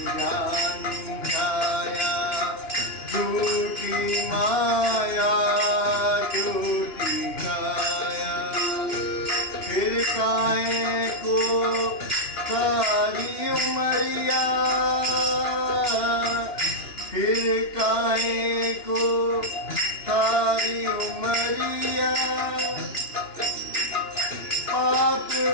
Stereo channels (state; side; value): late; right; 2.9 ms